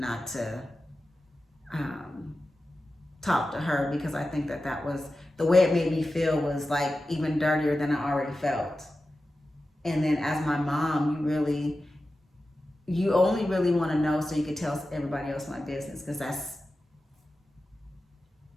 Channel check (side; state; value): both; normal; correlation 0.93